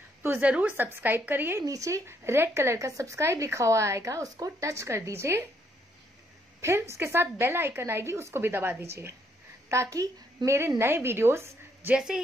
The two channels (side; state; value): both; normal; correlation 0.72